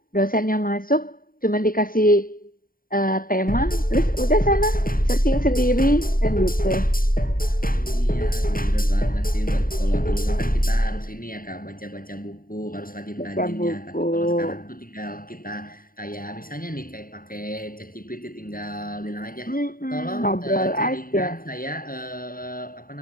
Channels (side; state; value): right; late; 0.41 ms